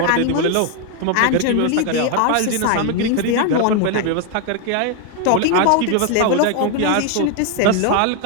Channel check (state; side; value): different; both; correlation 0.01